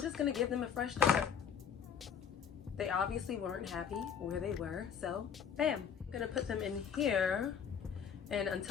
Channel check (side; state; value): right; quieter; 7.6 dB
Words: just gonna give them a fresh start. They obviously weren't happy where they were, so bam. I'm gonna put them in here, and